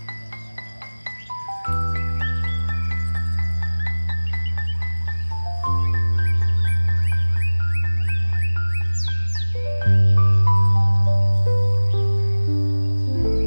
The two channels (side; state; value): both; inverted; correlation -1.00